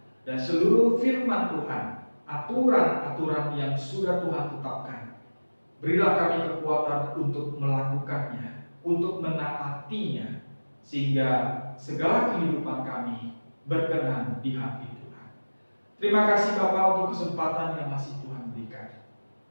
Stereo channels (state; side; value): inverted; both; correlation -1.00